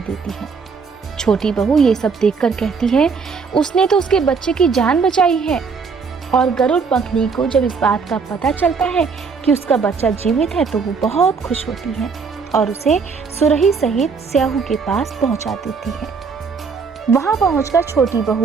है। छोटी बहू ये सब देखकर कहती है, उसने तो उसके बच्चे की जान बचाई है। और गरुड़ पंखनी को जब इस बात का पता चलता है कि उसका बच्चा जीवित है तो वो बहुत खुश होती है और उसे सुरही सहित स्याहू के पास पहुंचा देती है। वहां पहुंचकर छोटी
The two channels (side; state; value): left; quieter; 5.3 dB